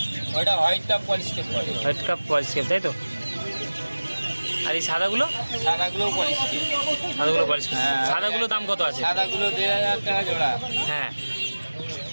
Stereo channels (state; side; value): inverted; both; correlation -1.00